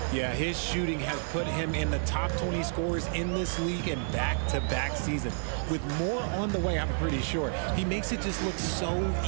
Yeah, his shooting has put him in the top 20 scorers in this league in back-to-back seasons. With more on the way, I'm pretty sure. He makes it just look so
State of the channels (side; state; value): left; silent; digital silence